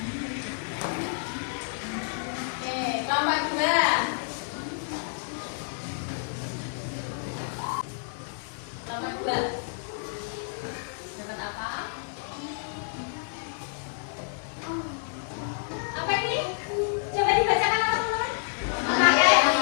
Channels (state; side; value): silent; right; 59 dB below the other